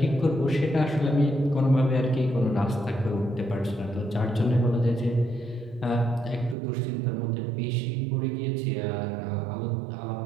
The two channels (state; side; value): drops out; left; at 6.6 s